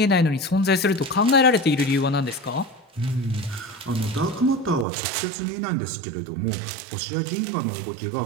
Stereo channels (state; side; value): drops out; left; at 4.9 s